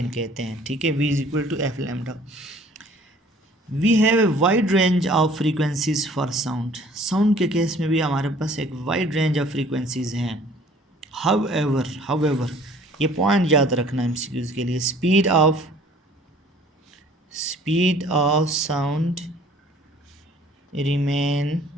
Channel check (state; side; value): normal; both; correlation 0.53